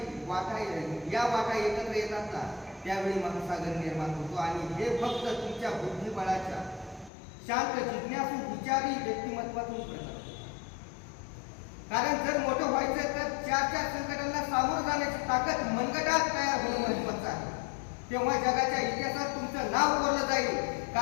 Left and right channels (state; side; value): drops out; right; at 7.1 s